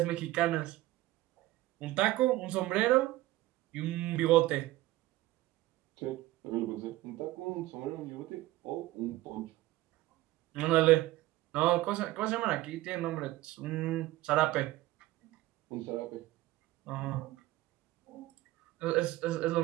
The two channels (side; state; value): left; quieter; 17.2 dB